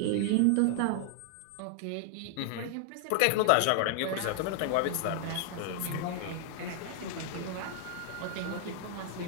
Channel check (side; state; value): both; different; correlation 0.00